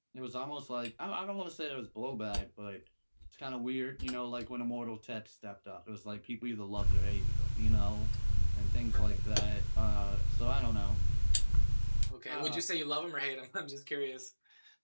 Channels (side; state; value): both; inverted; correlation -1.00